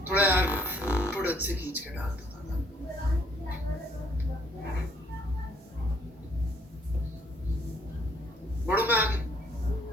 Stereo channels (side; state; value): both; normal; correlation 0.64